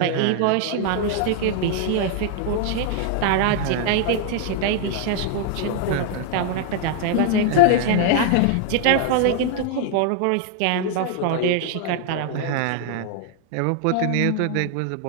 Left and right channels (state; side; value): different; both; correlation 0.00